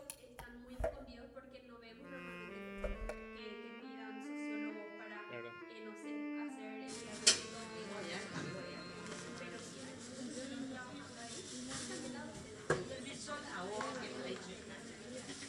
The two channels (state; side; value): identical; both; correlation 1.00